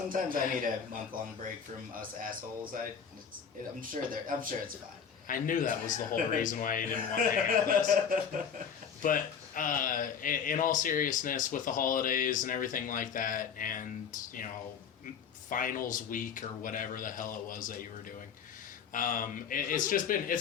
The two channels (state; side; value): quieter; right; 7.1 dB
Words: I need a month-long break from us assholes. I'm sure it's fine. I knew that was the whole reason why you didn't want to hang out with us. But in all seriousness, with the holidays and everything like that, and, finals week or whatever the hell it was that you were doing,